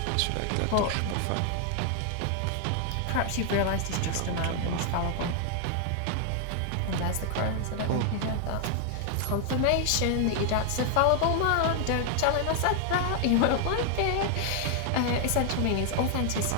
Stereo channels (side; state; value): both; different; correlation 0.00